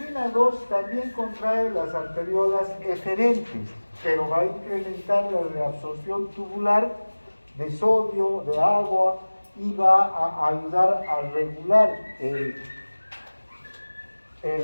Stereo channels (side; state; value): both; inverted; correlation -1.00